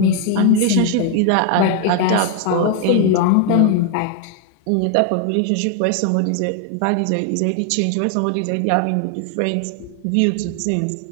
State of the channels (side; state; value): both; different; correlation 0.01